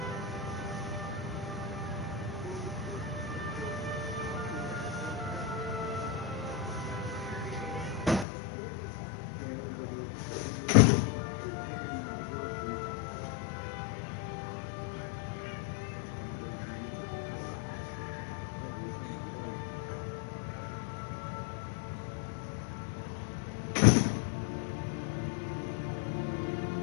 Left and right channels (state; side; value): drops out; right; at 8.2 s